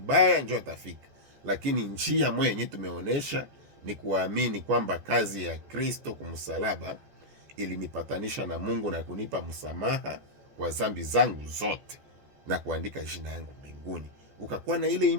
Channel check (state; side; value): late; left; 14 ms